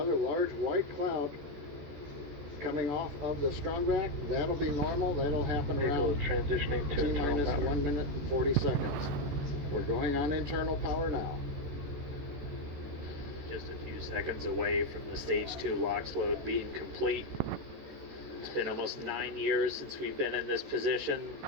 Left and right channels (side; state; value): left; late; 14 ms